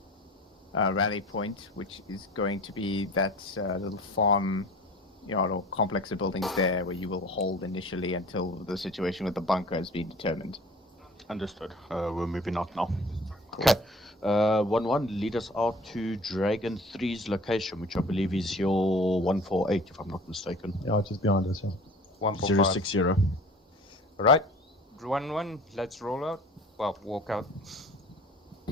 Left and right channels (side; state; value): both; normal; correlation 0.45